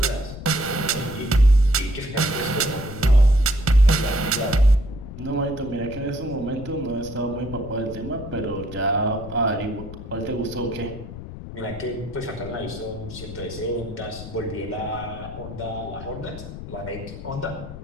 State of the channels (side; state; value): left; noise; rumble, 11 dB below the sound